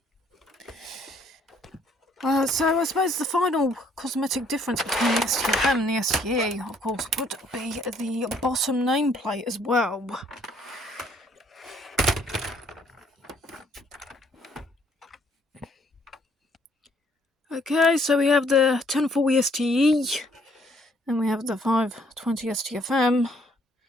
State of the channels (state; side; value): normal; both; correlation 0.64